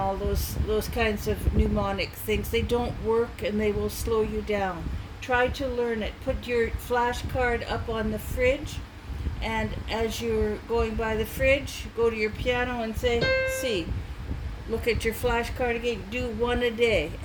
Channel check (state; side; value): identical; both; correlation 1.00